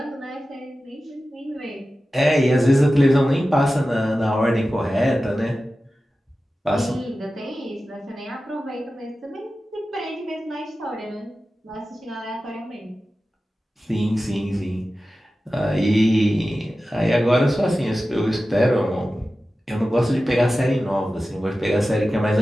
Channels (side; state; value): both; normal; correlation 0.94